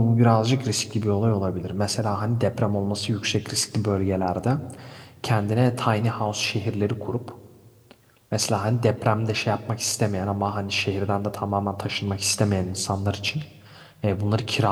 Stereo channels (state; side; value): identical; both; correlation 1.00